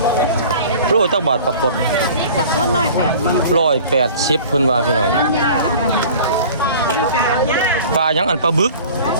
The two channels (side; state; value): both; inverted; correlation -0.44